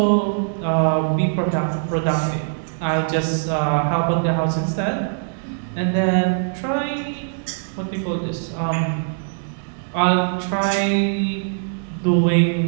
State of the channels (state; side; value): silent; left; 65 dB below the other